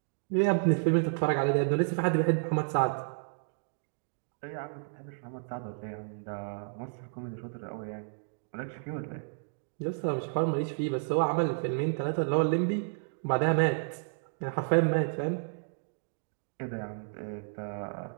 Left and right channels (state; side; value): silent; left; digital silence